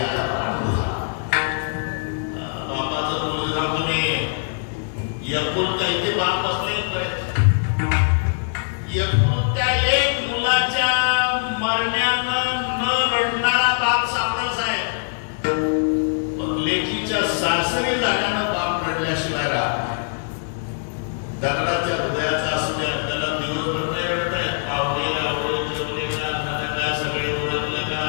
लालसरी झाल्यानं बाप रडल्याशिवाय राहत नाही. दगडाच्या हृदयाचा असू द्या, त्याला दिवसभर नाही रडताय. पावणे आवडे जेवले का सगळे ओळखले का,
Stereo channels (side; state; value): right; silent; digital silence